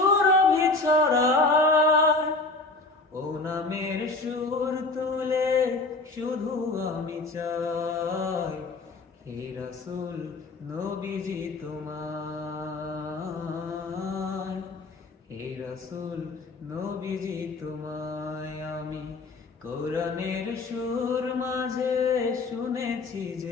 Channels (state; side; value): quieter; right; 3.4 dB